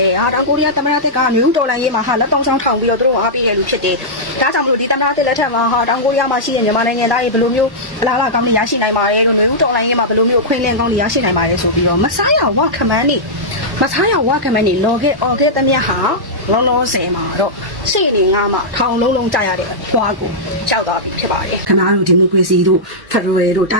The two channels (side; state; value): left; late; 1.1 ms